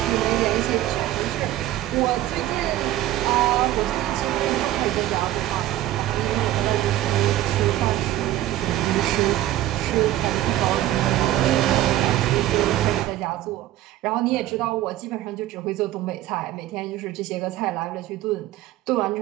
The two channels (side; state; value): left; quieter; 14.1 dB